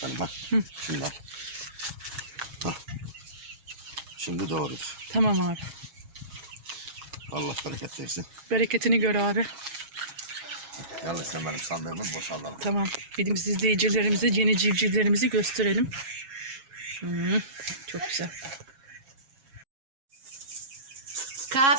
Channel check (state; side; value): late; left; 7.3 ms